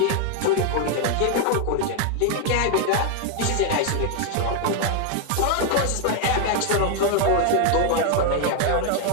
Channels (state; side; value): different; both; correlation 0.00